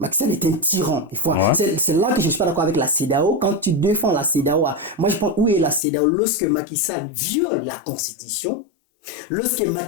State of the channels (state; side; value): drops out; right; at 5.8 s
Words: Sall est un tyran. C'est là que je ne suis pas d'accord avec la CEDEAO. Quand tu défends la CEDEAO, moi je pense où est la CEDEAO lorsque Macky Sall viole la Constitution, lorsque